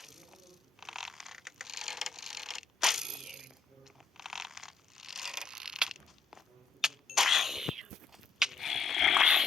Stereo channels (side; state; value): right; quieter; 4.7 dB